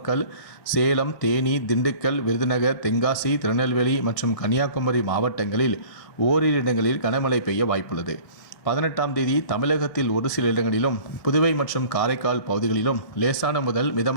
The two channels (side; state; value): right; late; 1.6 ms